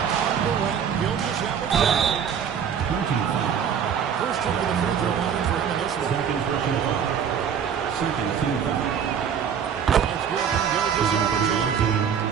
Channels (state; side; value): quieter; left; 7.8 dB